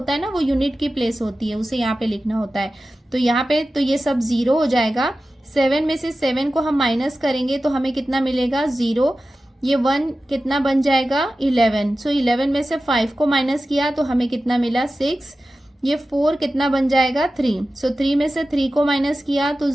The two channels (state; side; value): normal; both; correlation 0.94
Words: है ना वो यूनिट की प्लेस होती है, उसे यहाँ पे लिखना होता है। तो यहाँ पे तो ये सब 0 हो जाएगा। 7 में से 7 को हम माइनस करेंगे तो हमें कितना मिलेगा 0। ये 1 कितना बन जाएगा 11। सो 11 में से 5 को माइनस किया तो हमें कितना मिला 6। ये 4 कितना बन जाएगा 3। सो 3 में से 3 को माइनस किया तो